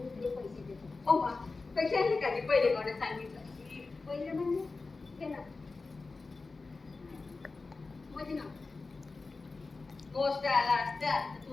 मी तुले पैसे देतो हो बा पैसे नाही का पहिले कोणी सांगितलं पहिले म्हणजे घे ना म्हणजे ना गोष्ट आला असता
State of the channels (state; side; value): quieter; right; 3.9 dB